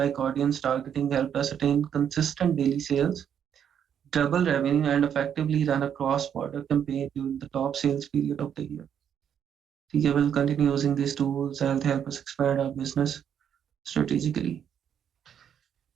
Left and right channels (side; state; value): left; quieter; 8.7 dB